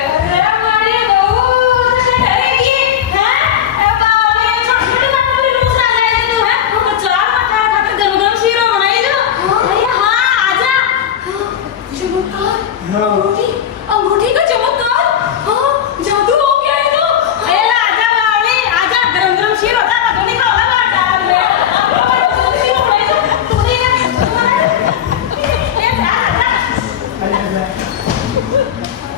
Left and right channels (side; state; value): right; quieter; 9.7 dB